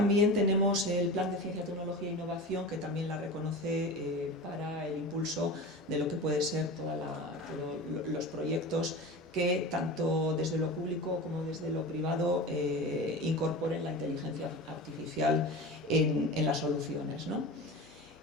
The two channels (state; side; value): normal; both; correlation 0.30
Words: tenemos el Plan de Ciencia, Tecnología e Innovación, que también la reconoce para el impulso de lo que puede ser todos los proyectos que tanto desde lo público como desde lo privado incorporen la inteligencia artificial en las soluciones, ¿no?